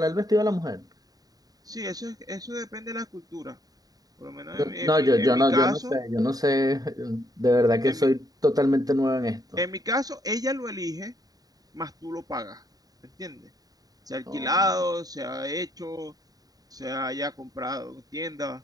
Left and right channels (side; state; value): left; late; 0.18 ms